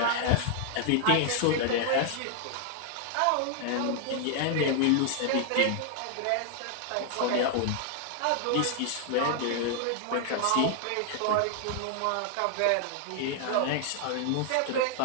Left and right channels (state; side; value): different; both; correlation 0.00